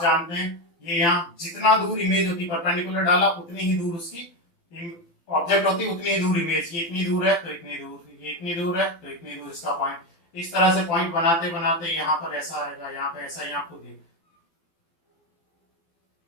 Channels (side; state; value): right; late; 12 ms